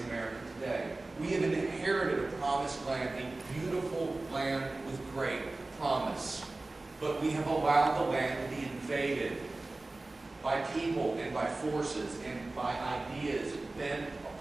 America today. We have inherited a promised land, a beautiful land with great promise. But we have allowed the land to be invaded by people and by forces and by ideas bent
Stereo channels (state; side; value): quieter; left; 3.1 dB